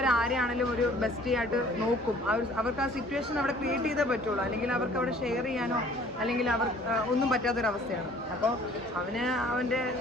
ആരെയാണെങ്കിലും ഒരു ബെസ്റ്റി ആയിട്ട് നോക്കും. അവർക്ക് ആ സിറ്റുവേഷൻ അവിടെ ക്രിയേറ്റ് ചെയ്തേ പറ്റുള്ളൂ. അല്ലെങ്കിൽ അവർക്ക് അവിടെ ഷെയർ ചെയ്യാനോ അല്ലെങ്കിൽ ഒന്നും പറ്റാത്തൊരവസ്ഥയാണ്. അപ്പോൾ അവൻ്റെ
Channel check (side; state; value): both; normal; correlation 0.54